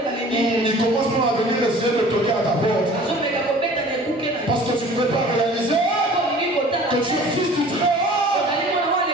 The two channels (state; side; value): normal; both; correlation 0.47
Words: Ils commencent à venir essayer de toquer à ta porte. Parce que tu ne peux pas réaliser que tu es fils du Très-Haut.